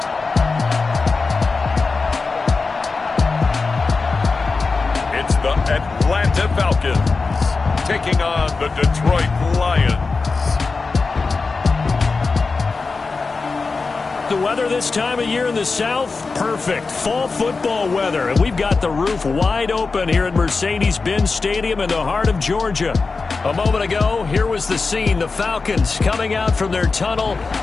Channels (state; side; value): quieter; right; 4.2 dB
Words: It's the Atlanta Falcons taking on the Detroit Lions. The weather this time of year in the South, perfect. Fall football weather. And we've got the roof wide open here at Mercedes-Benz Stadium in the heart of Georgia. A moment ago, here was the scene. The Falcons coming out from their tunnel